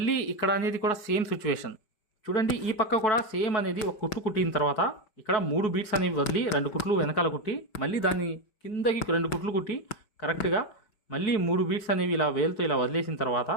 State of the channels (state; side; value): late; right; 4.6 ms